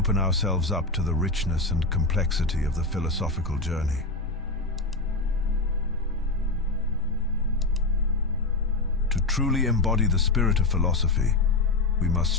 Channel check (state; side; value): quieter; right; 3.2 dB